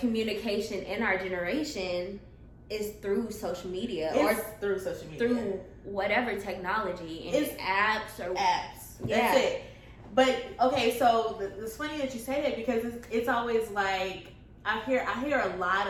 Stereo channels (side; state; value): both; identical; correlation 1.00